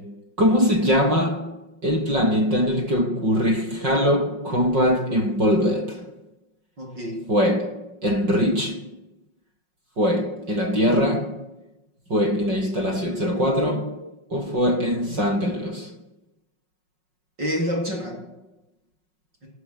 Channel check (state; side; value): late; left; 5.5 ms